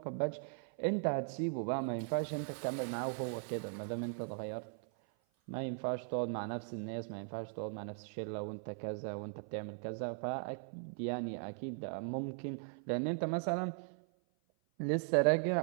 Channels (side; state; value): left; silent; 52 dB below the other